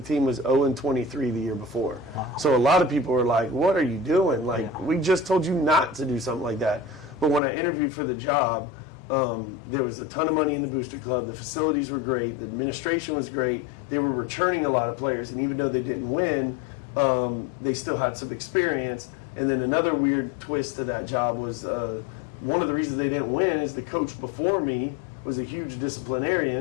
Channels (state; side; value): drops out; right; at 7.4 s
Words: team was 0-23 the year before. So a lot of people were like, what are you doing? We just told you not to do something like that. But when I interviewed for the job, there was a ton of money in the booster club. The facilities were great. The administration was great. They were returning a lot of players. And even though they didn't win, they still had some experience. And then another weird twist to that job was one of the reasons they didn't win is the coach before me was a huge